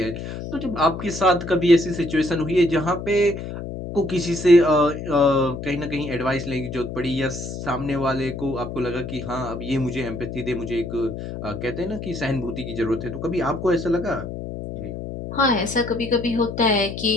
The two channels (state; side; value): noise; left; hum, 7 dB below the sound